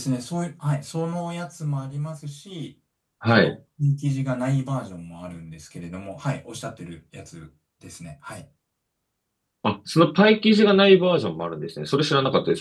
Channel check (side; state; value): both; identical; correlation 1.00